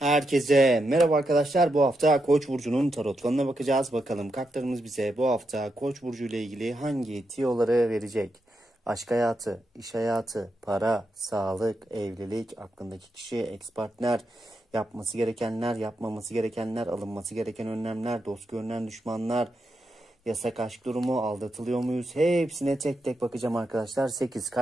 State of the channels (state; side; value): normal; both; correlation 0.85